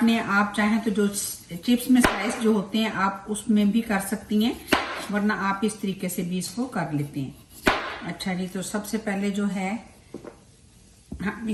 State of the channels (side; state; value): both; identical; correlation 1.00